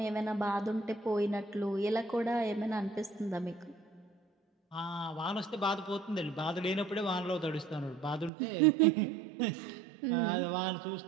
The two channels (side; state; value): left; drops out; at 8.3 s